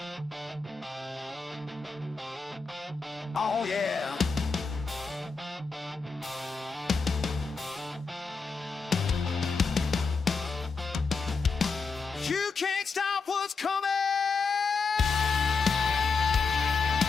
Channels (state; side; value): quieter; right; 4.6 dB